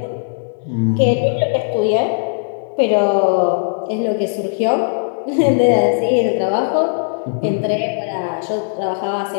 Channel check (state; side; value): silent; right; digital silence